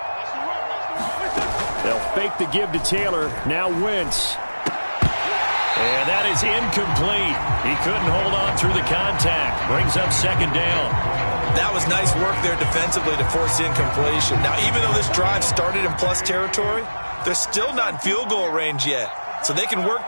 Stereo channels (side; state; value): both; inverted; correlation -1.00